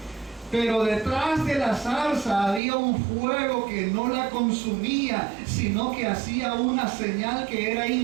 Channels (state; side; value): drops out; left; at 2.6 s